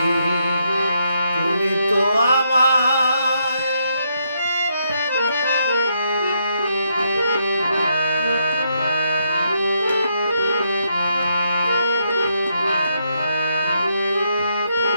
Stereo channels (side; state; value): both; inverted; correlation -0.77